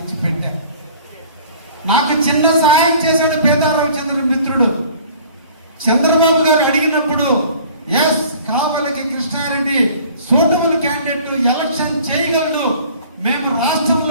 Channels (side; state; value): both; inverted; correlation -0.50